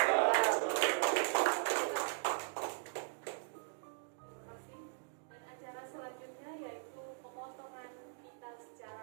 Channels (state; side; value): silent; left; digital silence